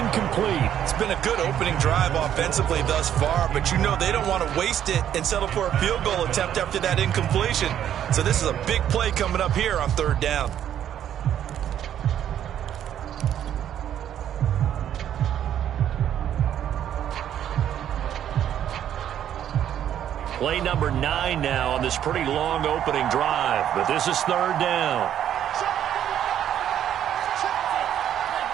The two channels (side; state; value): left; quieter; 10.3 dB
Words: It's been a good opening drive offensively thus far, but you know they don't want to waste it and settle for a field goal attempt after that incompletion. So this is a big play coming up here on 3rd down. Play number 9 now on this pretty long opening drive, but this is 3rd down.